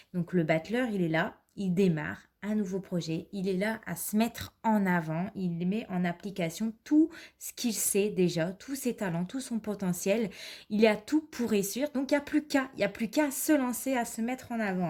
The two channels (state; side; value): identical; both; correlation 1.00